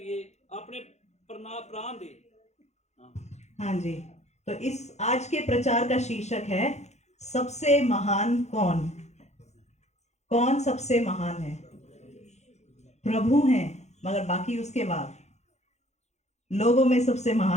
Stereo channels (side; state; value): right; late; 0.33 ms